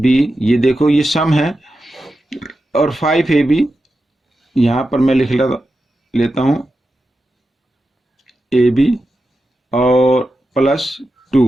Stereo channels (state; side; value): normal; both; correlation 0.90